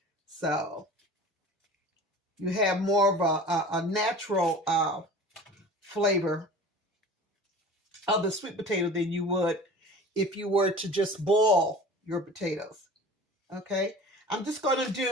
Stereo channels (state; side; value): normal; both; correlation 0.40